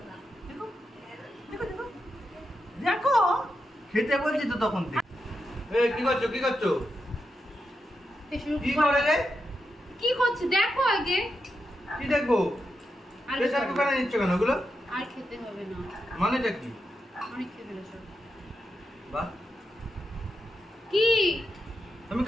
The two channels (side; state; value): both; normal; correlation 0.86